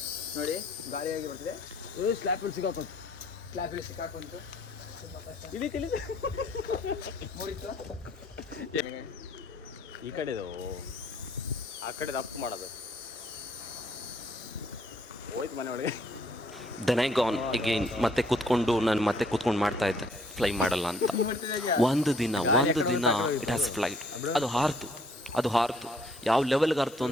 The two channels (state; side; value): normal; both; correlation 0.63